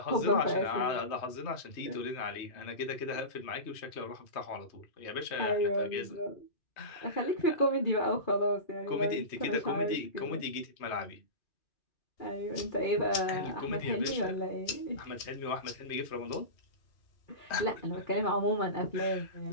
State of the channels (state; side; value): late; right; 3.1 ms